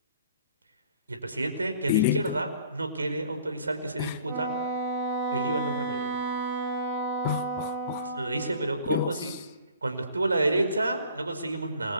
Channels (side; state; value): both; inverted; correlation -0.52